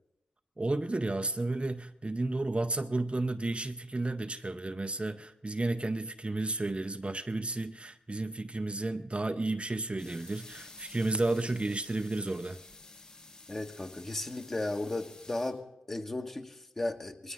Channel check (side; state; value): both; normal; correlation 0.84